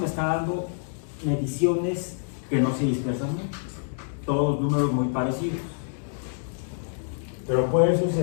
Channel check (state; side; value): silent; right; digital silence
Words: está dando mediciones que no se dispersan mucho, todos números muy parecidos, pero puede